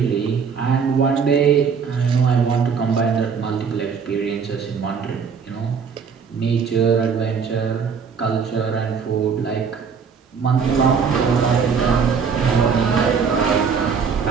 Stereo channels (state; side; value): quieter; left; 6.1 dB